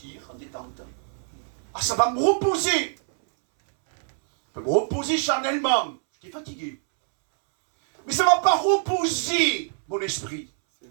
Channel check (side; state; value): left; silent; 62 dB below the other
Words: en détente. Ah, ça va me reposer. Ça va me reposer charnellement. J'étais fatigué. Mais ça ne va pas reposer mon esprit.